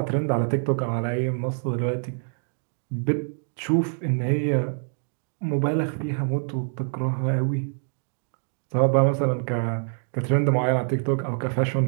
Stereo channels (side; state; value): left; silent; digital silence